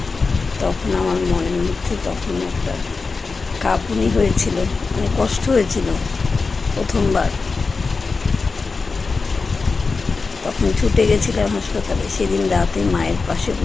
তখন আমার মনের মধ্যে তখন একটা কাঁপুনি হয়েছিল, মানে কষ্ট হয়েছিল প্রথমবার। তখন ছুটে গেছিলাম হাসপাতালে। সেদিন রাতে মায়ের পাশে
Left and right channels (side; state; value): right; quieter; 4.3 dB